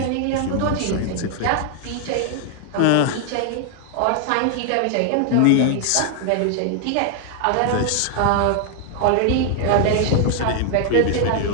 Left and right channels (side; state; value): both; different; correlation 0.00